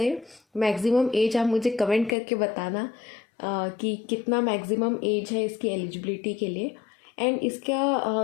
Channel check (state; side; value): drops out; right; at 2.1 s